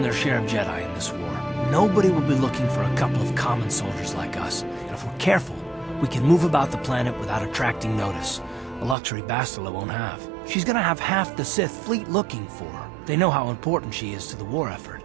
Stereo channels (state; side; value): drops out; left; at 9.0 s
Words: their share of Jedi in this war. Nobody will be looking for a couple of common soldiers like us, and if we're careful, we can move about the planet without attracting notice, a luxury Bastila won't have. She's gonna have half the Sith fleet looking for her. They know how important she is to the war effort.